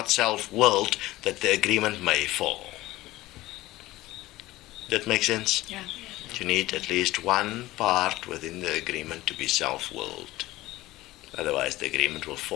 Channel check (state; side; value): quieter; right; 17.7 dB